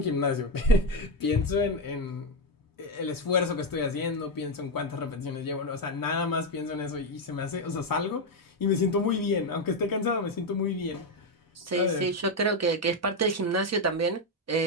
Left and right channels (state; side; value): normal; both; correlation 0.08